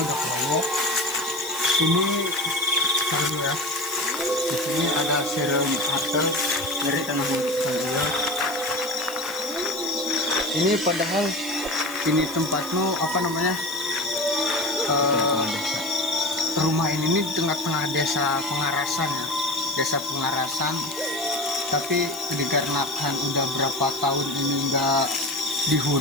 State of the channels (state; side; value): noise; left; hiss, 13 dB below the sound